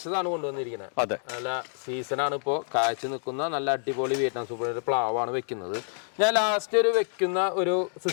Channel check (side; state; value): right; silent; digital silence